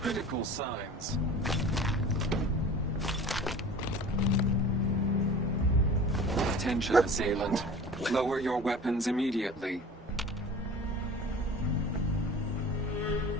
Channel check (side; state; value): both; normal; correlation 0.40